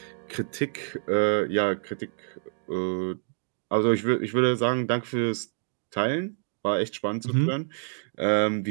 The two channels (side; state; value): left; silent; digital silence